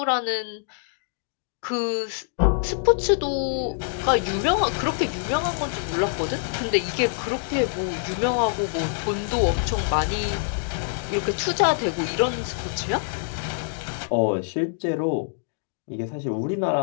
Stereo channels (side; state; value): right; silent; digital silence